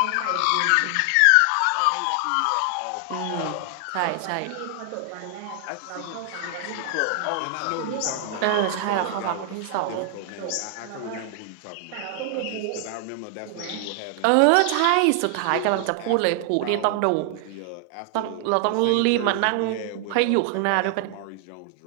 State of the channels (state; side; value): different; both; correlation 0.00